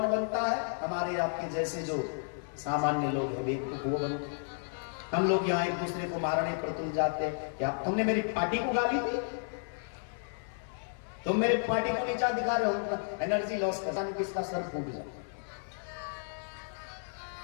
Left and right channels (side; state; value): right; silent; 56 dB below the other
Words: बनता है? हमारे आपके जैसे जो सामान्य लोग हैं, बेवकूफ वो बनते। हम लोग यहाँ एक दूसरे को मारने पर तुल जाते हैं। क्या तुमने मेरी पार्टी को गाली दी? तुम मेरे पार्टी को नीचा दिखा रहे हो, एनर्जी लॉस करने किसका सर फूट जाए।